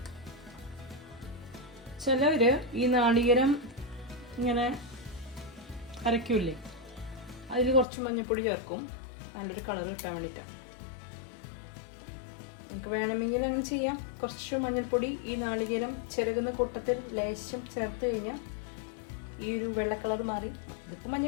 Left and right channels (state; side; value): drops out; right; at 7.9 s